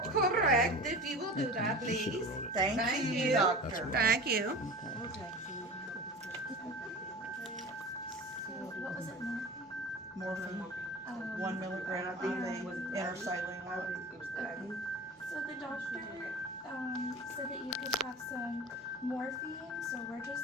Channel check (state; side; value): normal; both; correlation 0.36